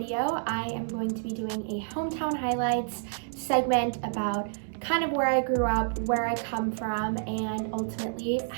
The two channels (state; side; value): silent; left; digital silence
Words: I am going to be doing a hometown highlights segment about kind of where I grew up, where I come from, and ultimately